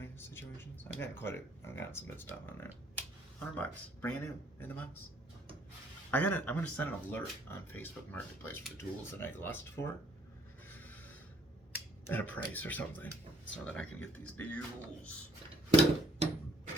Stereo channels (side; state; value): both; normal; correlation 0.62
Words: of situations. I've gotten some good stuff on there. $100, brand new in the box. I'm gonna send an alert on Facebook Marketplace for the tools that I lust for at a price or something, so that I can get these deals. So